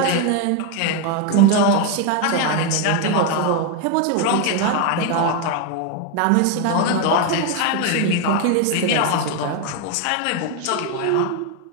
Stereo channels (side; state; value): both; different; correlation 0.02